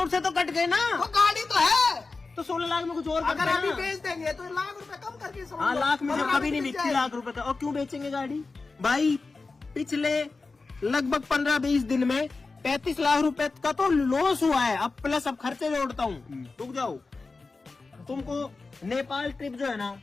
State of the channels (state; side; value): quieter; right; 3.9 dB